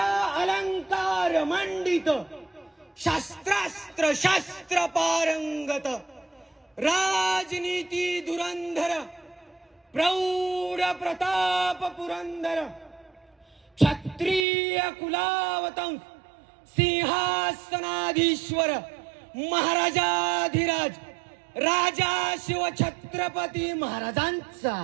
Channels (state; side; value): drops out; left; at 14.5 s